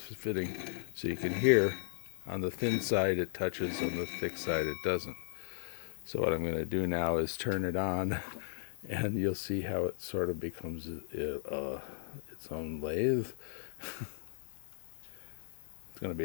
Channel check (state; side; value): silent; right; digital silence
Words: fitting, so you can hear on the thin side it touches, on the thick side it doesn't. So what I'm going to do now is turn it on, and you'll see how it sort of becomes its own lathe. It's going to